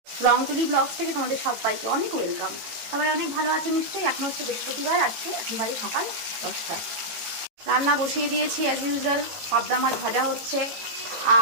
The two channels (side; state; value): left; late; 18 ms